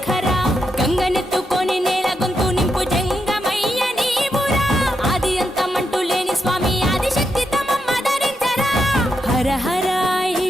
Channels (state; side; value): normal; both; correlation 0.83